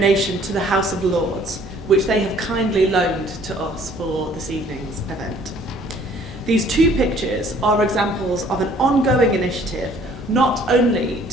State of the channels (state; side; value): normal; both; correlation 0.57